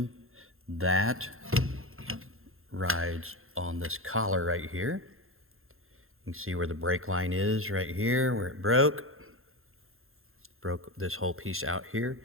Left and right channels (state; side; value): late; left; 0.61 ms